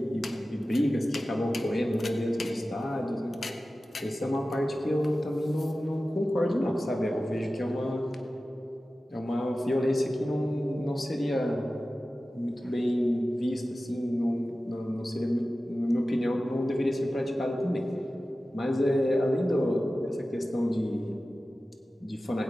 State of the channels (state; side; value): normal; both; correlation 0.95